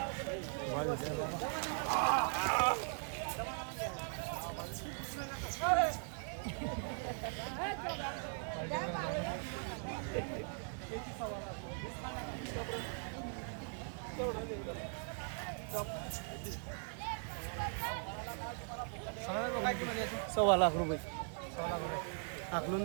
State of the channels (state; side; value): silent; left; 51 dB below the other